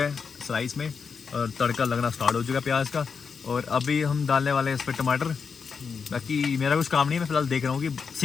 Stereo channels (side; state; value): right; quieter; 5.8 dB